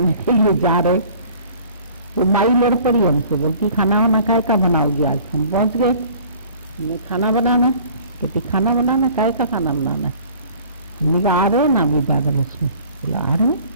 के लिए जा रहे। तो माई लड़ पड़ी हमसे, बोलती खाना वाना काय का बनाओगी आज। हम पहुंच गए, हमने खाना बनाना, कहती खाना बनाना काय का खाना बनाना है। हमने कहा आ रहे ना अभी ज्यादा लक्ष्मी। बोला आ रहे,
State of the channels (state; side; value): inverted; both; correlation -0.50